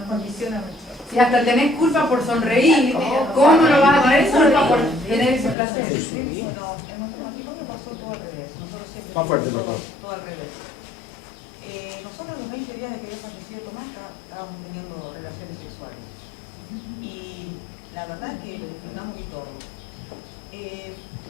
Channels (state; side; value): drops out; right; at 5.6 s